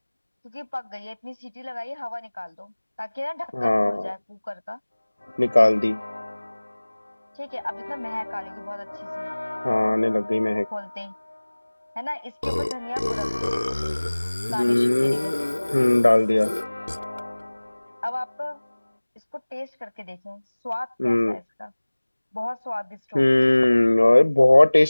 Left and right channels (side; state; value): both; inverted; correlation -1.00